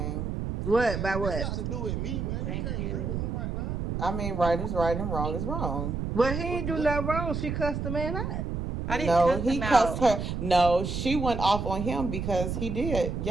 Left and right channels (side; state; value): right; noise; rumble, 3 dB below the sound